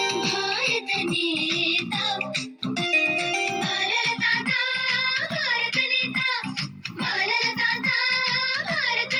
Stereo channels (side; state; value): both; identical; correlation 1.00